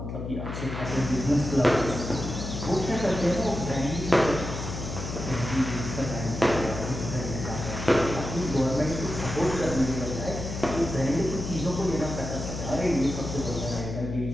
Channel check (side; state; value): left; noise; hum, 6 dB below the sound